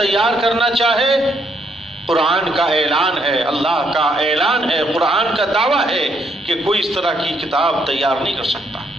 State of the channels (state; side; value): normal; both; correlation 0.72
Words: کرنا چاہے، قرآن کا اعلان ہے، اللہ کا اعلان ہے، قرآن کا دعویٰ ہے کہ کوئی اس طرح کی کتاب تیار نہیں کر سکتا۔